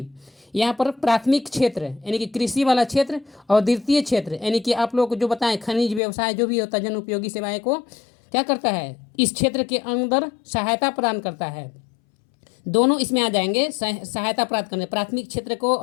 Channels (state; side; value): drops out; right; at 6.0 s